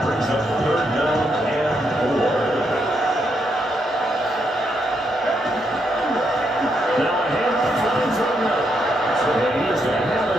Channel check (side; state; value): both; normal; correlation 0.78